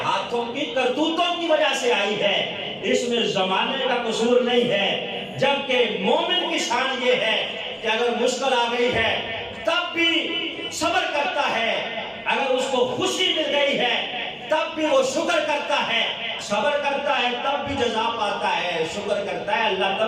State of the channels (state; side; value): identical; both; correlation 1.00